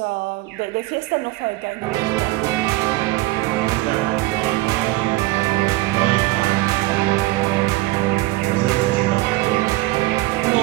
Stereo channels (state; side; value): quieter; left; 19.5 dB